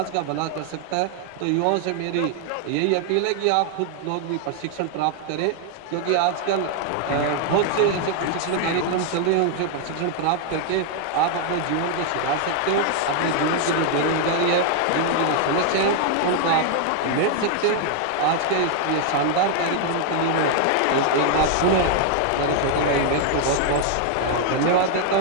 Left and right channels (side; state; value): both; different; correlation 0.00